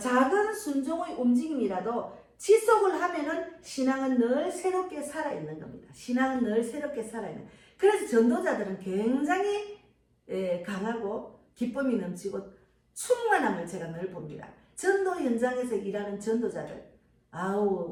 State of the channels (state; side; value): identical; both; correlation 1.00